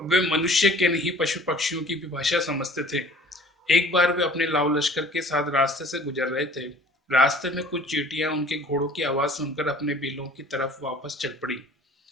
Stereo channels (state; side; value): normal; both; correlation 0.49